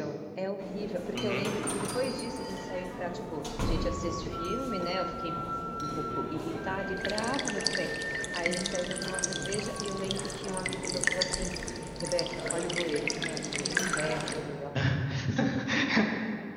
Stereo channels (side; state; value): both; identical; correlation 1.00